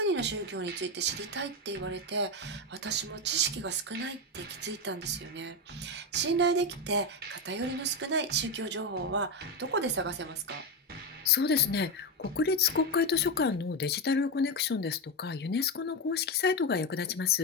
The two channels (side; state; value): both; normal; correlation 0.11